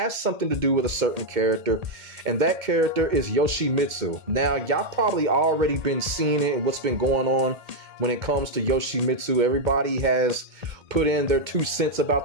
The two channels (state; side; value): late; left; 2.2 ms